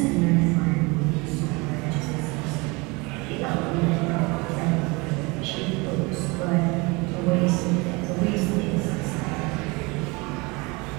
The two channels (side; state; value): left; quieter; 26.3 dB